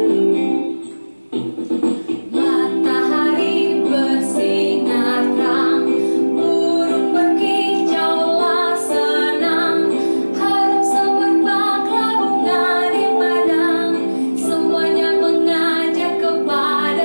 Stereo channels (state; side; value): inverted; both; correlation -1.00